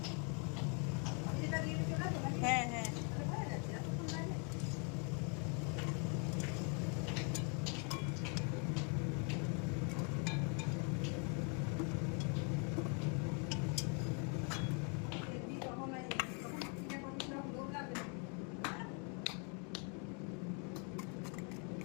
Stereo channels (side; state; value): right; quieter; 37.5 dB